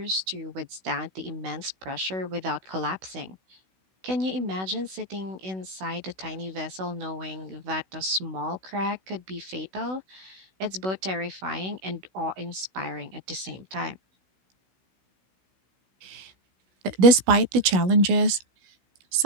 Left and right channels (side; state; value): left; late; 16 ms